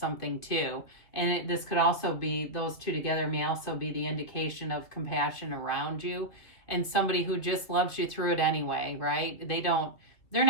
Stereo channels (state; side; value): late; right; 2.7 ms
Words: too. And this could also be, those two together may also be the indication of compassion around you, and somebody who just loves you through it anyway, right? They're